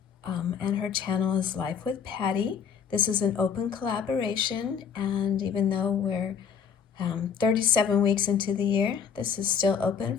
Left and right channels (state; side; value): quieter; right; 7.0 dB